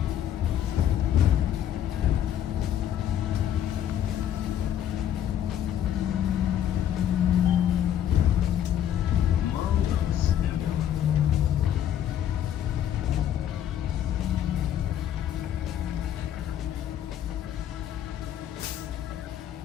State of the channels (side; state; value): right; quieter; 10.5 dB